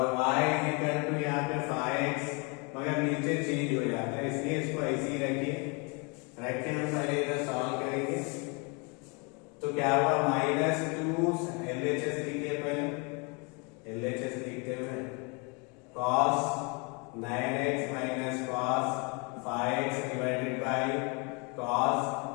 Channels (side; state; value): right; quieter; 32.0 dB